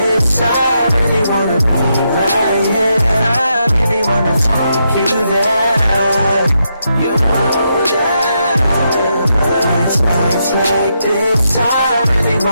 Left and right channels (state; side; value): inverted; both; correlation -0.81